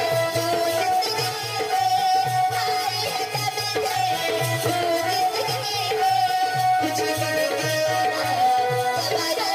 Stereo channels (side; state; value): both; identical; correlation 1.00